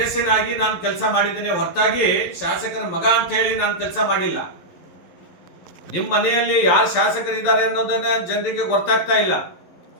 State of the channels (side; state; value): right; late; 11 ms